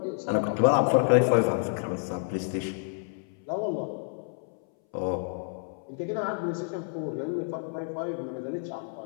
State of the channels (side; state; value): right; silent; 59 dB below the other